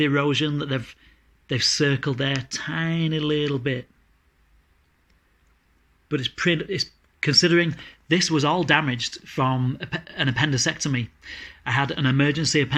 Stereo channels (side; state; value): both; identical; correlation 1.00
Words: erosion that they've circled there? Tiny little bit. But it's considering this was all damaged from an appendicectomy. I had an emergency